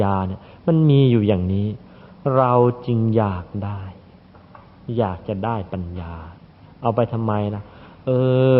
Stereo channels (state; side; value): identical; both; correlation 1.00